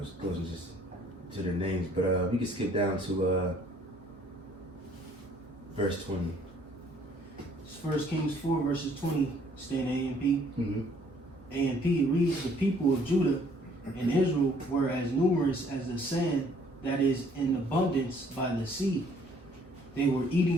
it goes just to their names. But we can skip down to verse 20. It's 1 Kings 4 verses 20. Stay in A and P. Mm-hmm. A and P reads, the people of Judah and Israel were as numerous as the sand that is in abundance by the sea. They were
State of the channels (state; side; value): normal; both; correlation 0.61